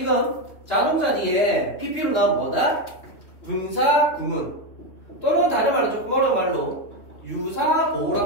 자동사 뒤에 PP로 나온 뭐다? 분사 구문 또는 다른 말로 조금 어려운 말로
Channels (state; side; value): late; right; 3.0 ms